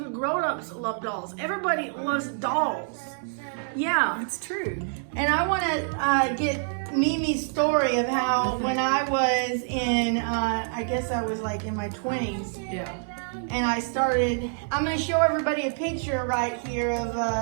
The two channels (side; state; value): left; silent; 60 dB below the other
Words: grown-ups love dolls. Everybody loves dolls. Yeah. It's true. And I want to get Mimi's story of how when I was in, I guess I was like in my 20s. Yeah. And I started, I'm going to show everybody a picture right here of